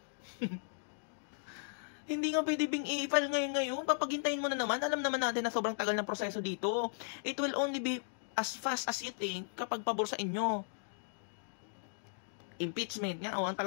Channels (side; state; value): right; silent; digital silence